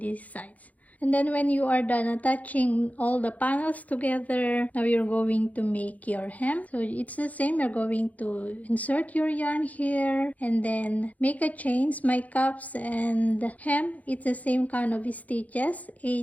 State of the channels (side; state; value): right; late; 0.074 ms